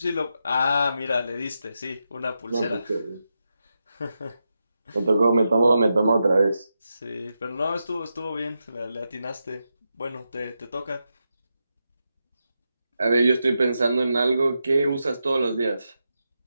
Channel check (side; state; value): both; inverted; correlation -0.87